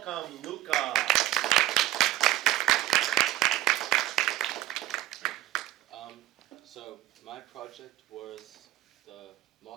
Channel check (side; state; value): left; quieter; 14.9 dB